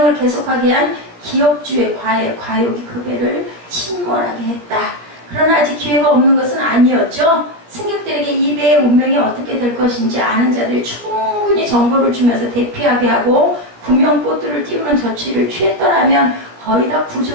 계속하게 한 기업주의 과욕이 그 배를 침몰하게 했다. 그러나 아직 기회가 없는 것은 아니었죠. 승객들에게 이 배의 운명이 어떻게 될 것인지 아는 자들이 충분히 정보를 주면서 대피하게 하고 구명보트를 띄우는 조치를 취했더라면 거의 다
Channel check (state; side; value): late; left; 17 ms